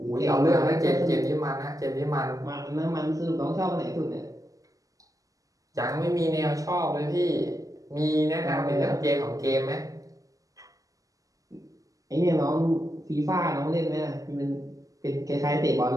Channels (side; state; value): left; late; 0.17 ms